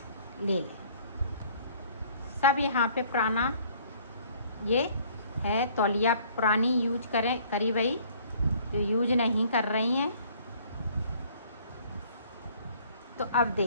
ले लें। सब यहाँ पे पुराना ये है, तौलिया पुरानी यूज करी भाई, जो यूज नहीं कर रही हैं। तो अब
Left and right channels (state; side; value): inverted; both; correlation -0.57